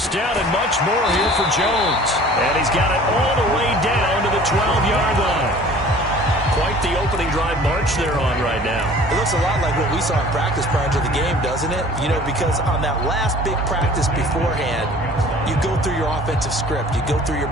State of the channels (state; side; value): normal; both; correlation 0.48